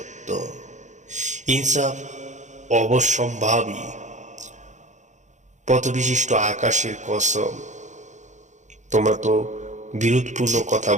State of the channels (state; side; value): late; left; 0.35 ms